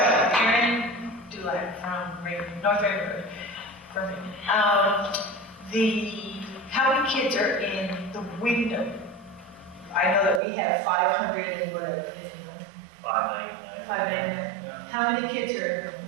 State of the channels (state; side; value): drops out; left; at 10.4 s